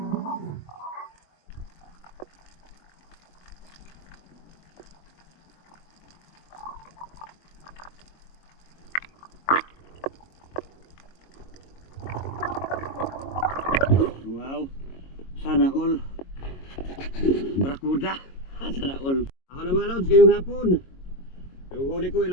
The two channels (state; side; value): late; right; 22 ms